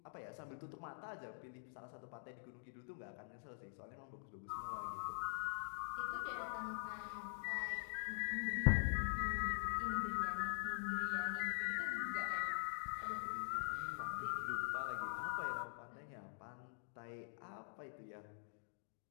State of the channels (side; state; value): right; silent; digital silence